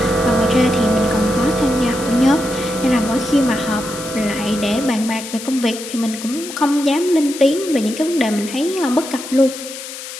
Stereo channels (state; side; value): noise; left; hiss, 11 dB below the sound